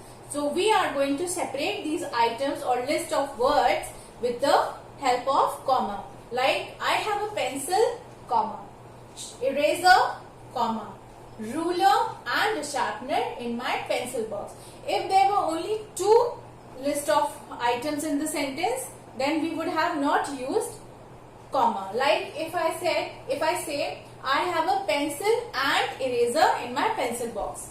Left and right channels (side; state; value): both; identical; correlation 1.00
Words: So we are going to separate these items or list of words with the help of comma. Like I have a pencil, comma, eraser, comma, ruler and a sharpener in my pencil box. If there were only 2 list of items in the sentence, then we would have not used comma. Like if I say I have a pencil and eraser in my pencil